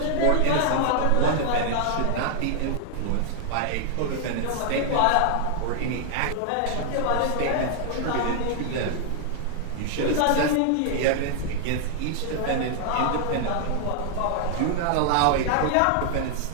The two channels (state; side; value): different; both; correlation 0.00